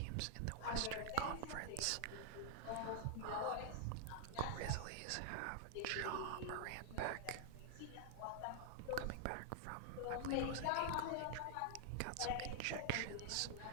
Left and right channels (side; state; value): both; different; correlation 0.00